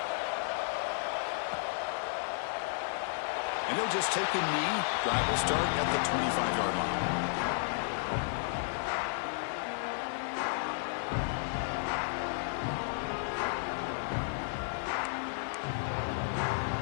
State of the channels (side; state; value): right; silent; digital silence